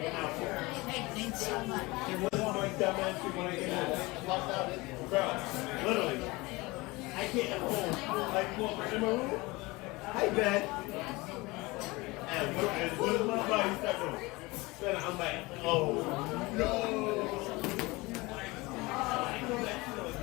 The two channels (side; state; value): right; quieter; 22.8 dB